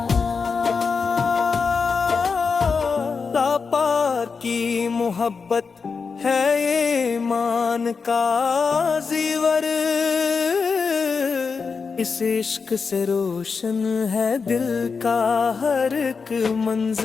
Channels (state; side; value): quieter; right; 5.2 dB